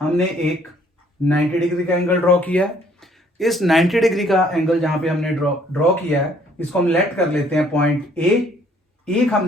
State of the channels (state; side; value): normal; both; correlation 0.62